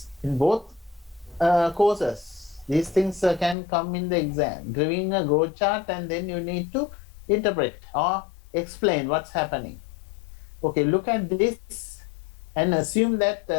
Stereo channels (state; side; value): drops out; right; at 3.6 s